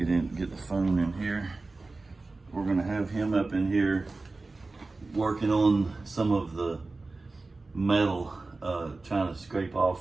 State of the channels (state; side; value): quieter; left; 3.5 dB